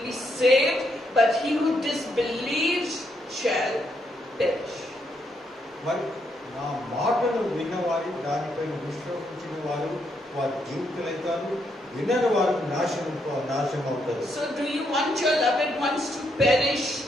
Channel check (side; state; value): both; normal; correlation 0.77